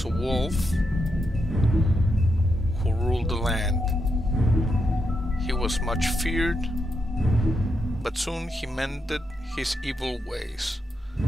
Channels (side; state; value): both; normal; correlation 0.83